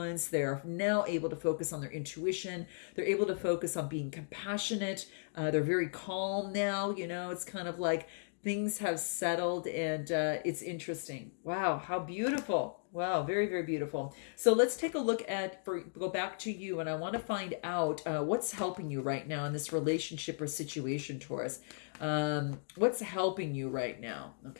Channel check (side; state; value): right; silent; digital silence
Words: They're now able to focus on their intuition. They're able to focus on being compassionate. They're very calm now. It's kind of like things have settled, and it's interesting. Wow, how beautiful. Wow, very, very beautiful. So let's take a look go back to you, and I want to find out what's helping you right now in this relationship or situation, Taurus. What's helping you right now?